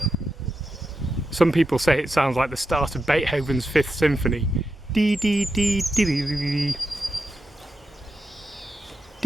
Some people say it sounds like the start of Beethoven's Fifth Symphony. Dee dee dee dee dee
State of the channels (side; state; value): both; normal; correlation 0.88